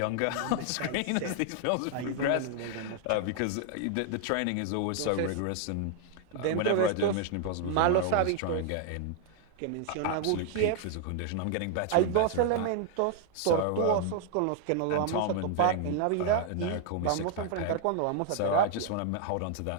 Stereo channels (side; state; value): both; different; correlation 0.00